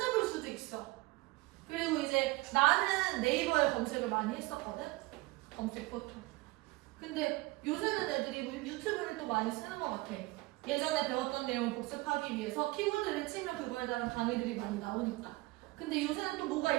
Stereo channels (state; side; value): quieter; left; 21.5 dB